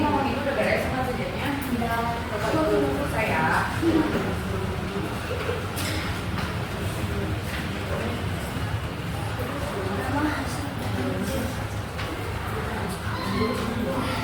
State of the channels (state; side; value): identical; both; correlation 1.00